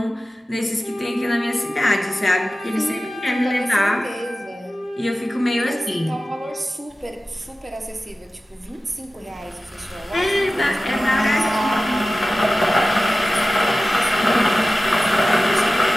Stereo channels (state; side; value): normal; both; correlation 0.95